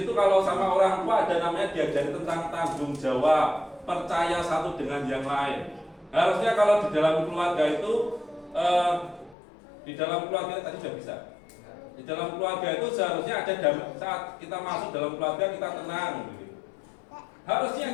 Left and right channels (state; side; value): drops out; right; at 9.3 s